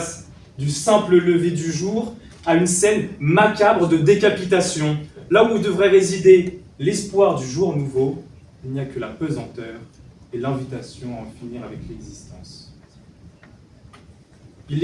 du simple lever du jour à une scène macabre de décapitation, là où devrait résider l'espoir du jour nouveau il n'y a que la pesanteur et l'invitation à en finir avec l'existence. Il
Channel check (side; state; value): both; identical; correlation 1.00